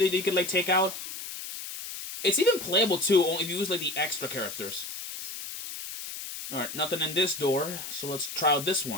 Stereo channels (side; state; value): left; noise; hiss, 8 dB below the sound